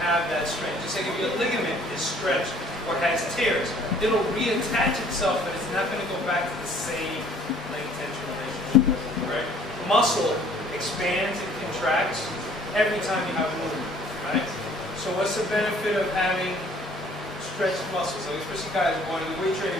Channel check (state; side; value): normal; both; correlation 0.56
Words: have that strength. Just like if your ligament is stretched or has tears, it'll reattach itself, but it's not going to go back to the same length tension relationship. Right? Muscle expands and contracts every time you have movement. Right? So what's the benefit of having stretched muscles? Like especially guys who want to do weight training,